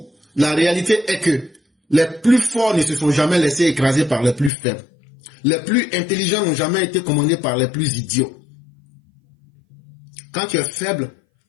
la réalité est que les plus forts ne se sont jamais laissés écraser par les plus faibles. Les plus intelligents n'ont jamais été commandés par les plus idiots. Quand tu es faible,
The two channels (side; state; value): right; drops out; at 4.5 s